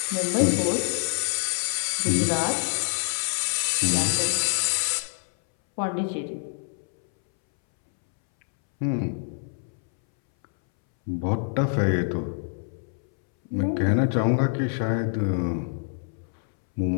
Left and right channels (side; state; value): right; silent; 61 dB below the other